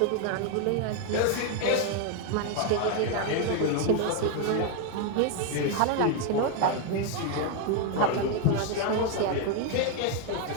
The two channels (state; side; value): different; both; correlation 0.01